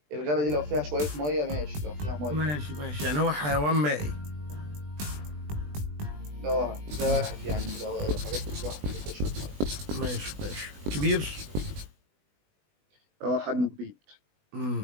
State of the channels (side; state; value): left; late; 20 ms